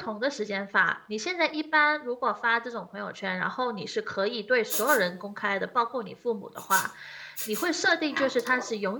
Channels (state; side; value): identical; both; correlation 1.00